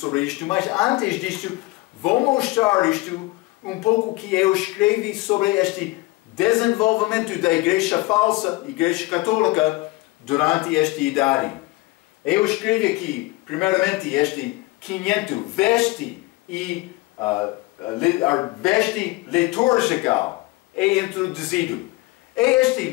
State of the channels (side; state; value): right; quieter; 21.1 dB